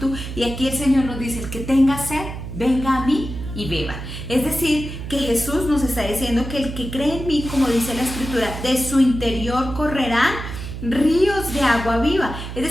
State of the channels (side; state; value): right; noise; hum, 8 dB below the sound